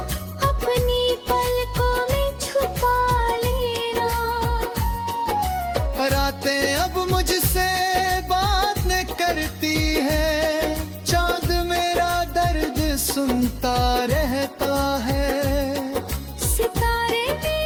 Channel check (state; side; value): identical; both; correlation 1.00